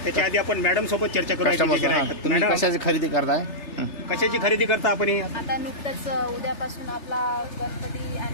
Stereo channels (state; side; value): late; right; 3.3 ms